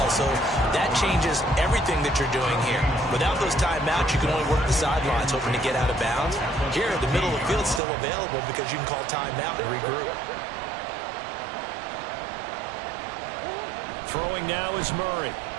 so that changes everything that you're doing here. Without those timeouts, you can only work the sidelines, hoping to get out of bounds. Here, the middle of the field is still available because you can call timeout and regroup. Throwing now is Murray.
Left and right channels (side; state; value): left; drops out; at 7.8 s